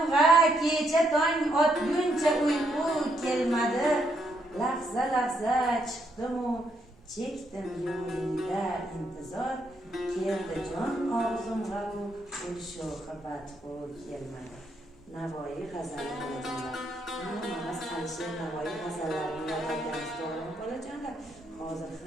kecha tong otguncha uyqu kelmadi. Lahza lahza chiqdimu chekdim yo'lingda intizor. Keldi jon og'zimga u sho'xi badxo'r kelmadi. Navoiy g'azali bolajonlar. Hammamiz Alisher Navoiy g'azallarini yod olganmiz, to'g'rimi bolajonlar? Hozir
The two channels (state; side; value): normal; both; correlation 0.75